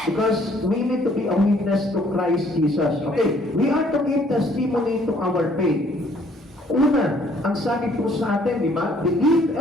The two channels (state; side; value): normal; both; correlation 0.62